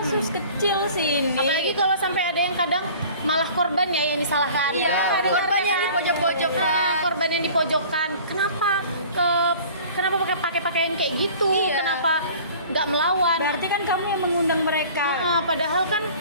kecil sih ini. Apalagi kalau sampai ada yang kadang malah korban ya yang disalahkan. Iya, Ada korban yang kan? dipojok-pojokkan. Nah, korban yang dipojokkan. Kenapa pakai pakaian kayak gitu? Iya. Kenapa nggak melawan? Berarti kan kamu yang mengundang mereka. Nah, padahal kan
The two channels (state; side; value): inverted; both; correlation -0.46